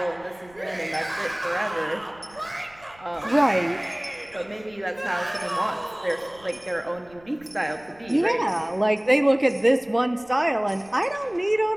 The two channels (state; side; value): noise; right; rumble, 27 dB below the sound